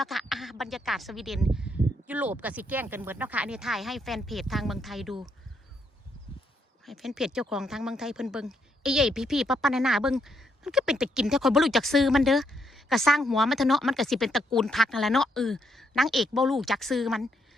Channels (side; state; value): both; normal; correlation 0.76